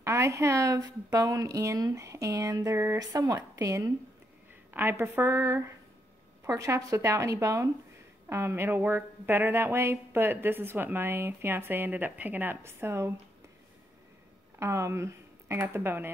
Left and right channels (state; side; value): normal; both; correlation 0.77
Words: have bone in and they're somewhat thin. I prefer pork chops without any bone. It'll work better that way, but this is what my fiance ended up picking up, so I got the bone